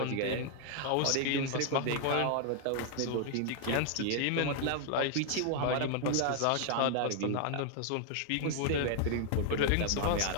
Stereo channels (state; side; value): different; both; correlation 0.00